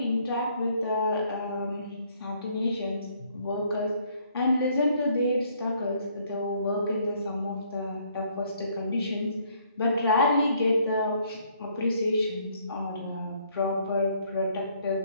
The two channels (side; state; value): both; inverted; correlation -0.65